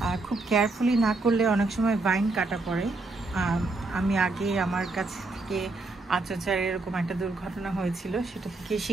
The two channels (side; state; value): left; quieter; 3.3 dB